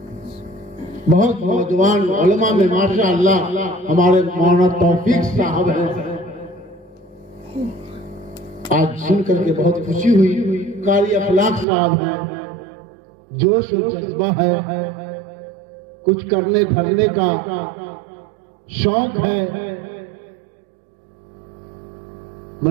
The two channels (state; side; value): drops out; left; at 11.7 s